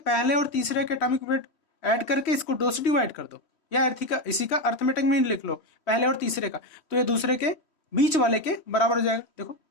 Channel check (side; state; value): right; late; 3.1 ms